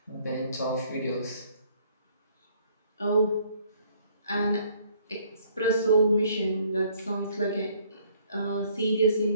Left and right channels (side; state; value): both; inverted; correlation -0.62